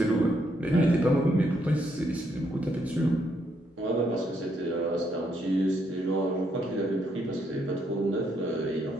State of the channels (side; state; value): both; normal; correlation 0.75